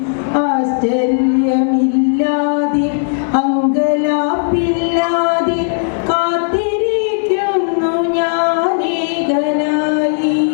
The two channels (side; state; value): right; silent; digital silence